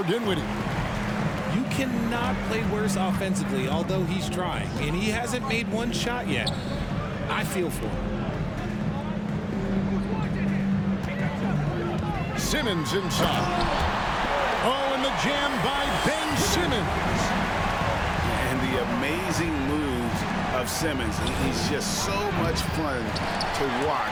Dinwiddie. You cannot play worse offensively, although he's trying, and he hasn't made one shot yet. I feel for him. Simmons inside. Oh, and the jam by Ben Simmons. And the amazing moves of Simmons. He's just so much fun to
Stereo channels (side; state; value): both; identical; correlation 1.00